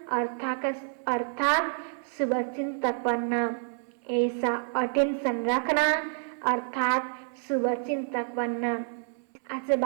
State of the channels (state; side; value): silent; left; 59 dB below the other